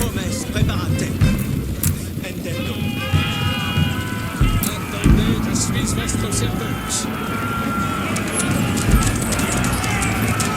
Hommes, preparate. Intendo. Attendez, je suis votre service.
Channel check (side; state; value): both; identical; correlation 1.00